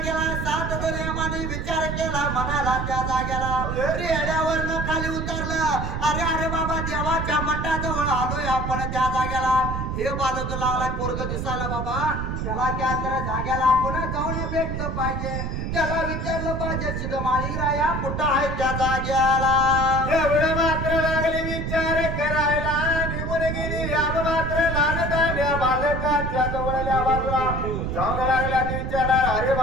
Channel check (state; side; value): noise; right; rumble, 3 dB below the sound